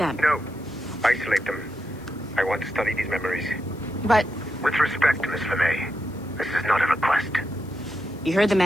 No. Isolate them. I want to study these memories. But... With respect, Miss LeMay, this is not a request. You heard the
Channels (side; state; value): left; noise; hiss, 26 dB below the sound